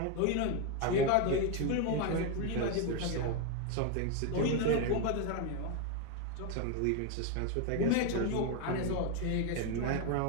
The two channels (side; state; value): both; different; correlation 0.02